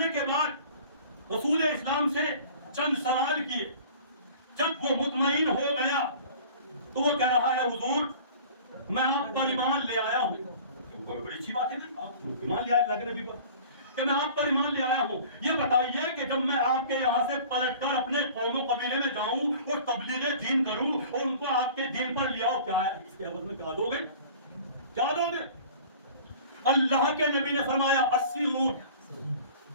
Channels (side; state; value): both; inverted; correlation -0.44